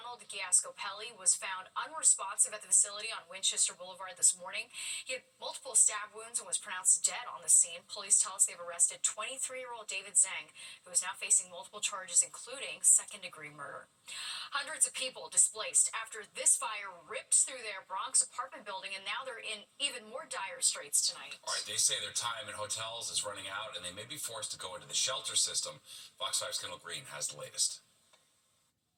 Giascopelli was found unresponsive at the facility on Winchester Boulevard this morning. He had multiple stab wounds and was pronounced dead on the scene. Police tell us they've arrested 23-year-old David Zhang, who is now facing multiple charges, including second-degree murder. Hundreds of people displaced after this fire ripped through their Bronx apartment building, and now they're in even more dire straits tonight. All right, they say their time in hotels is running out, and they may be forced to go into the shelter system. Fox 5's Kendall Green has the latest.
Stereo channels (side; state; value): both; identical; correlation 1.00